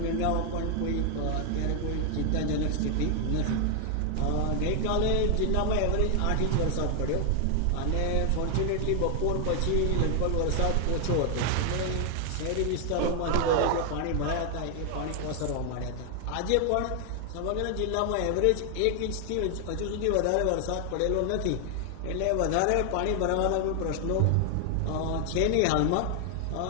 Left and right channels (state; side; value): different; both; correlation 0.00